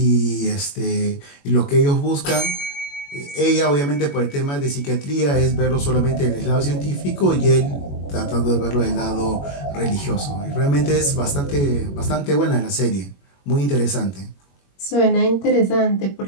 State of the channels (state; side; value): late; right; 21 ms